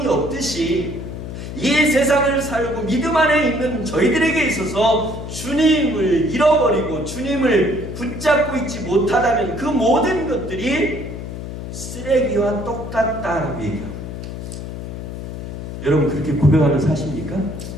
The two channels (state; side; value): noise; left; hum, 8 dB below the sound